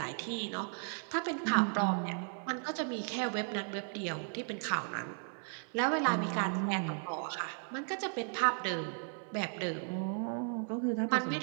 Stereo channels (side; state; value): left; silent; 54 dB below the other